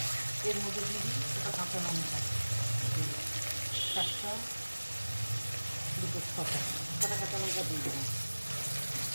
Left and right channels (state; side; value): inverted; both; correlation -1.00